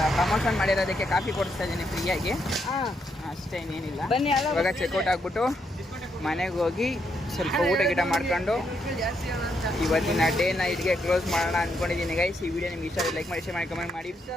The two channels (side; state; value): both; normal; correlation 0.78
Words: ಪ್ರಮೋಷನ್ ಮಾಡಿರೋದಕ್ಕೆ ಕಾಫಿ ಕೊಡಿಸ್ತಾ ಇದ್ದೀನಿ ಫ್ರೀಯಾಗಿ. ಅಷ್ಟೇ, ಇನ್ನೇನಿಲ್ಲ. ಇವಾಗ ಚೆಕ್ಔಟ್ ಆಗ್ಬಿಟ್ಟು ಮನೆಗೆ ಹೋಗಿ ಸ್ವಲ್ಪ ಊಟ ಗಿಟ ಮಾಡ್ಕೊಂಡು ಇವತ್ತಿನ ಡೇ ನೈಟ್ಗೆ ಕ್ಲೋಸ್ ಮಾಡೋಣ ಅಂದ್ಕೊಂಡಿದ್ದೀನಿ ಗೈಸ್. ಈ ವಿಡಿಯೋ ನಿಮ್ಗೆ ಇಷ್ಟ ಲೈಕ್ ಮಾಡಿ, ಶೇರ್ ಮಾಡಿ, ಕಮೆಂಟ್ ಮಾಡಿ.